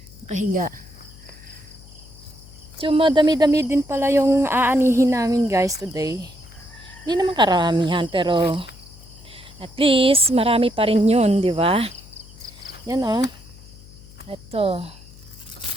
Nakahiga. So, madami-dami din pala yung aanihin namin guys today. Hindi naman karamihan pero at least marami pa rin yun, di ba? Yan oh. Ito.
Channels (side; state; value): left; noise; hum, 21 dB below the sound